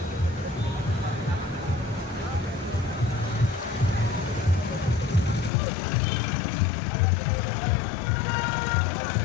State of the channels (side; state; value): right; drops out; at 5.5 s